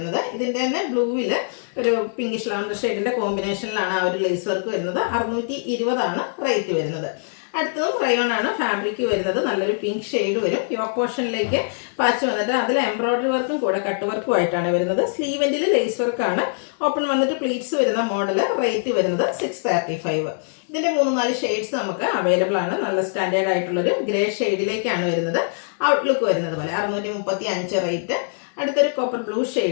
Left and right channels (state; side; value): silent; right; digital silence